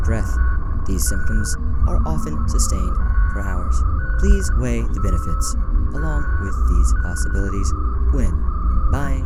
breath. These symptoms are often sustained for hours. Please weigh the benefits along with these possibilities when buying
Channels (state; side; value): identical; both; correlation 1.00